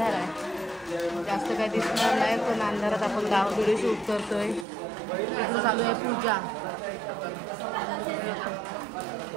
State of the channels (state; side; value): drops out; left; at 4.7 s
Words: आहे, जास्त काही दिसणार नाही, पण अंधारात आपण व्हिडिओ शूट करतोय. इथं चालू आहे पूजा.